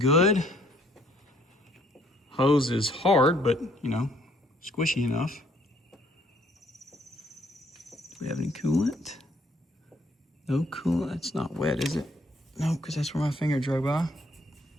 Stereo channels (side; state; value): both; normal; correlation 0.65